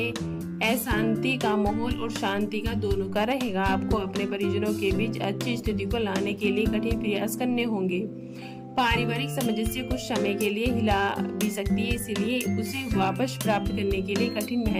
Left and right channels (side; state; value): both; identical; correlation 1.00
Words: अशांति का माहौल और शांति का दोनों का रहेगा। आपको अपने परिजनों के बीच अच्छी स्थिति को लाने के लिए कठिन प्रयास करने होंगे। पारिवारिक सामंजस्य कुछ समय के लिए हिला भी सकती है, इसलिए उसे वापस प्राप्त करने के लिए कठिन